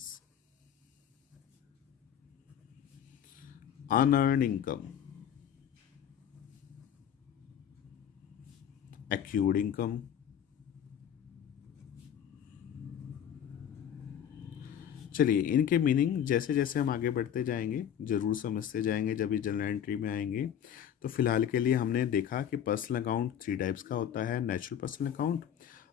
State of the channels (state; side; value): quieter; right; 9.4 dB